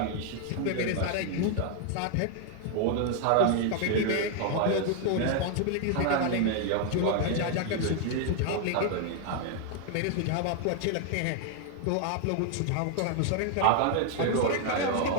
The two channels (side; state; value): both; different; correlation 0.00